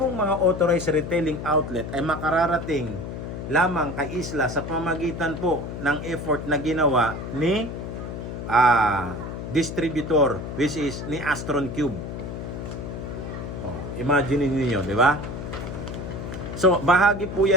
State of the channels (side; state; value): left; noise; hum, 7 dB below the sound